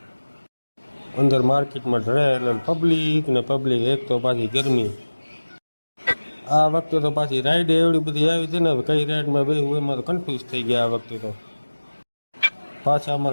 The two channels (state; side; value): inverted; both; correlation -1.00